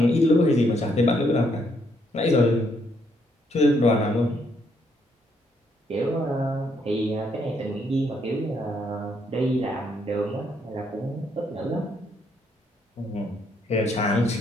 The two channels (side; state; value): both; normal; correlation 0.73